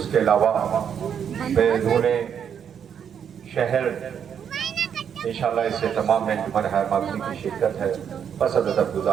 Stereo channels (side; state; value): left; quieter; 8.1 dB